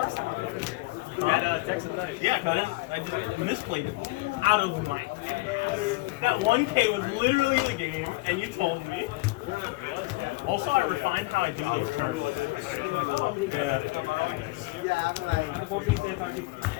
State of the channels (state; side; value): quieter; right; 22.7 dB